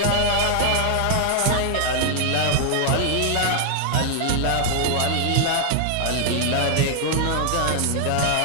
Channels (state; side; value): different; both; correlation 0.00